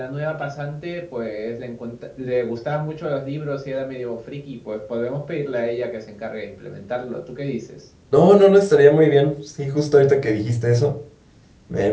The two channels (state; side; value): identical; both; correlation 1.00